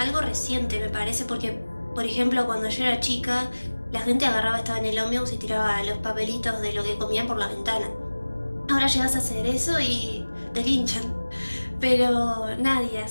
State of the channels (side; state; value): both; inverted; correlation -1.00